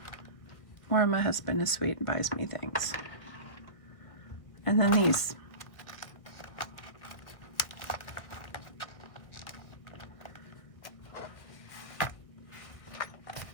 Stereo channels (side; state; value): right; late; 1.8 ms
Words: Or my husband is sweet and buys me things. And then these.